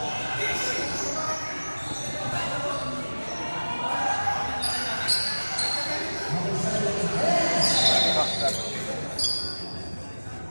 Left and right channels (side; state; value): both; inverted; correlation -1.00